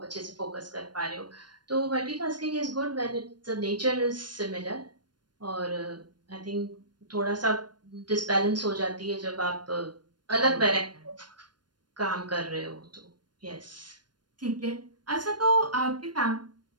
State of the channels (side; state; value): left; late; 0.71 ms